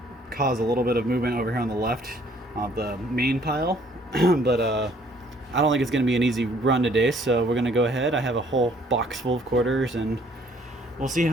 caused a little bit of movement over here on the left of the main pile. But I don't think it's going to be an easy run today, so we're going to go ahead. I have a whole box full of quarters, and we'll see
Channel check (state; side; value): normal; both; correlation 0.61